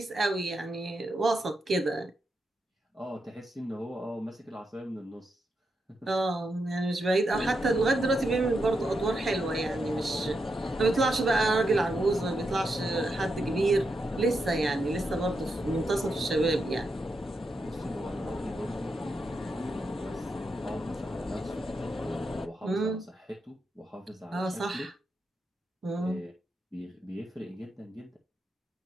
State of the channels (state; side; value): normal; both; correlation 0.84